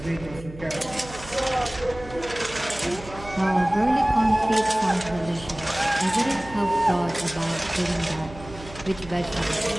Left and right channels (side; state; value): right; noise; hum, 16 dB below the sound